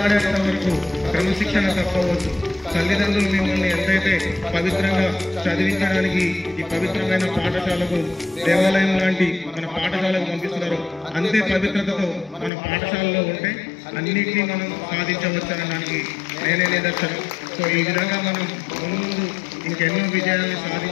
వరకు క్రమశిక్షణ తప్పవద్దు. తల్లిదండ్రులు మిమ్మల్ని ఎంతైతే పవిత్రంగా చదివించడానికి ఈ పవిత్రమైన పాఠశాలకు, దేవాలయం లాంటి మన పాఠశాలకు పంపిస్తున్నారో అంతే పవిత్రతతో మన పాఠశాలలో ఉంటే అన్నిటినీ మనం సాధించవచ్చనడానికి నేనే నిదర్శనం. సో ఈ విధంగా మనం ముందు ఇంకెన్నో విజయాన్ని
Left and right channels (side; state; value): right; drops out; at 12.5 s